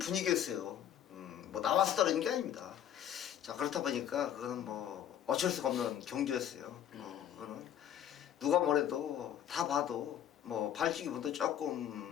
뭐 나와서 떨어진 게 아닙니다. 자, 그렇다 보니까 그거는 뭐 어쩔 수가 없는 경주였어요. 그거는 누가 뭐래도 다 봐도 뭐 발주기 분도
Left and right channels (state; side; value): quieter; right; 10.3 dB